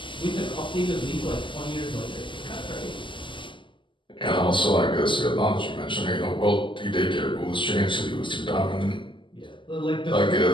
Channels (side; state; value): right; late; 0.24 ms